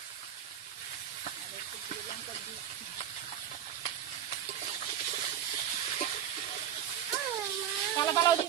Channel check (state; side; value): quieter; left; 9.9 dB